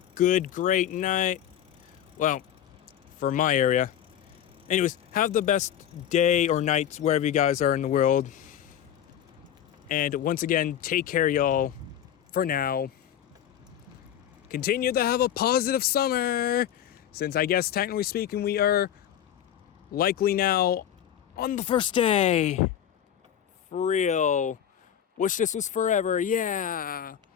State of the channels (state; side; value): quieter; right; 10.2 dB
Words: great night. Well, for my area. Anyways, have the best day or night wherever you guys are in the world. And once again, take care, y'all, for now. Continue to have a positive summer, since I guess technically speaking we are likely now on the first day. For real. Wish this was forever, yeah.